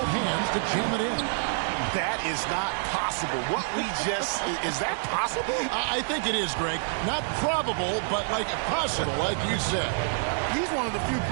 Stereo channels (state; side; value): silent; left; digital silence